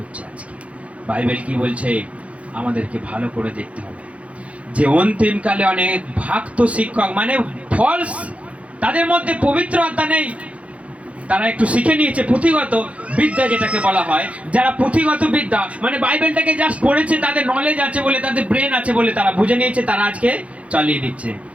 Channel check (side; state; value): left; late; 0.064 ms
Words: আজকে। বাইবেল কি বলছে? আমাদেরকে ভালো করে দেখতে হবে যে অন্তিমকালে অনেক ভক্ত শিক্ষক, মানে ফলস, তাদের মধ্যে পবিত্র আত্মা নেই। তারা একটু শিখে নিয়েছে পুঁথিগত বিদ্যা, যেটাকে বলা হয়। যারা পুঁথিগত বিদ্যা মানে বাইবেলটাকে জাস্ট পড়েছে, তাদের নলেজ আছে বলে, তাদের ব্রেন আছে বলে তারা বুঝে নিয়েছে, তারা আজকে চালিয়ে দিচ্ছে।